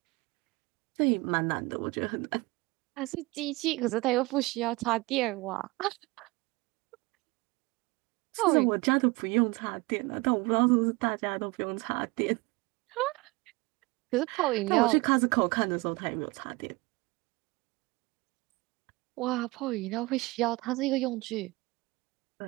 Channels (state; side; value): quieter; left; 23.5 dB